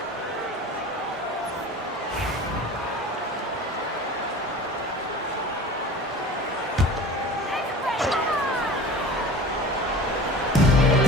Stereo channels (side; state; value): both; normal; correlation 0.37